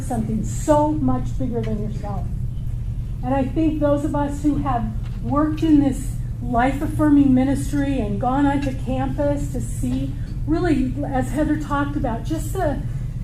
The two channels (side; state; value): both; identical; correlation 1.00